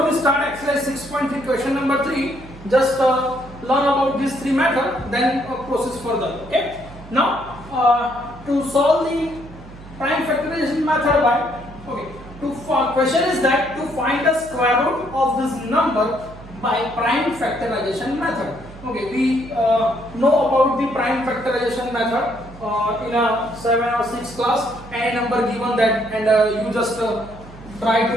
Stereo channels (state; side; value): noise; right; hum, 18 dB below the sound